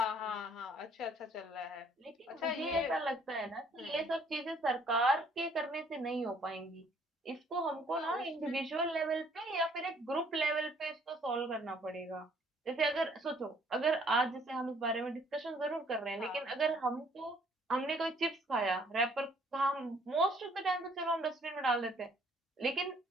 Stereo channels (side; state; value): both; normal; correlation 0.62